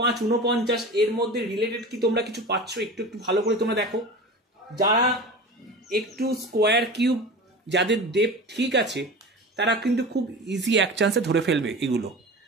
49 এর মধ্যে রিলেটেড কি তোমরা কিছু পাচ্ছ একটু ভালো করে তোমরা দেখো। যারা একটু স্কোয়ার কিউব, যাদের ডেপথ ঠিক আছে, তারা কিন্তু খুব ইজি এক চান্সে ধরে ফেলবে এগুলো।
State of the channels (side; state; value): both; normal; correlation 0.33